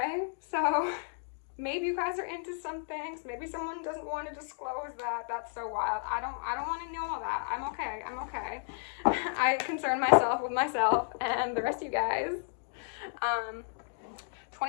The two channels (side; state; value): right; silent; digital silence